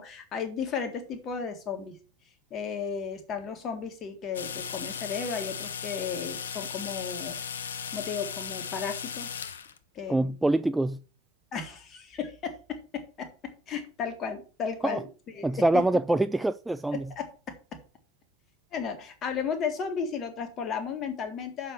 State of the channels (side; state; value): both; normal; correlation 0.59